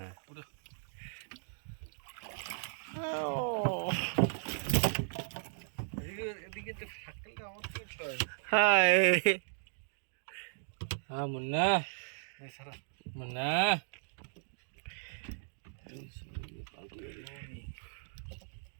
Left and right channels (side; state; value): left; silent; digital silence